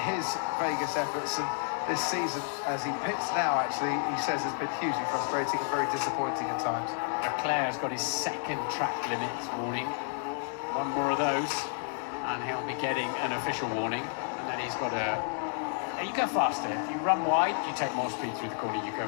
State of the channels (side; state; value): right; silent; 57 dB below the other